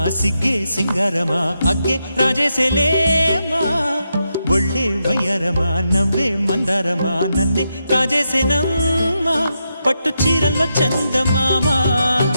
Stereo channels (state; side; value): inverted; both; correlation -0.84